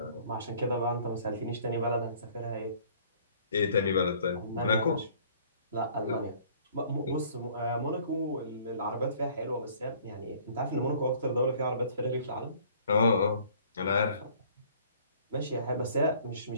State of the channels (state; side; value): inverted; both; correlation -0.55